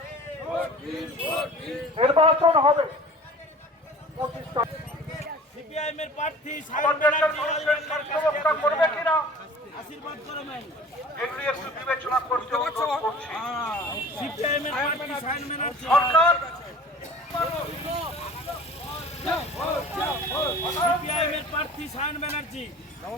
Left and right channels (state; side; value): normal; both; correlation 0.43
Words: নির্বাচন হবে 25 তারিখ। সিপিআইএমের প্রার্থী রক্ষা করবে কিনা আশীর্বাদ করে নাই এগুলি একটু বিবেচনা করতে অনুরোধ করছি। সিপিআইএমের প্রার্থী সায়ন ব্যানার্জি সরকার সিপিআইএমের প্রার্থী সায়ন ব্যানার্জি